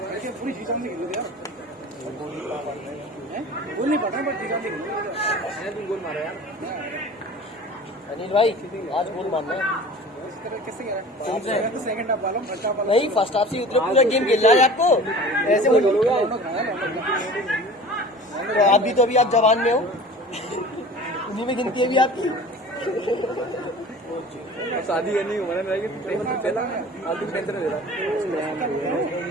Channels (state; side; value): normal; both; correlation 0.41